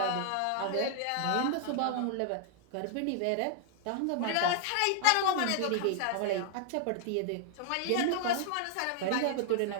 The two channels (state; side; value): different; both; correlation 0.00